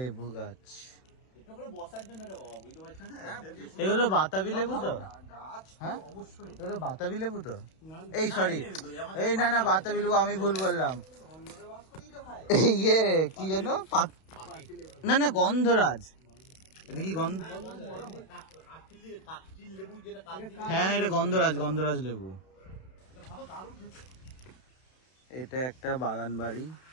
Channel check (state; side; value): late; right; 32 ms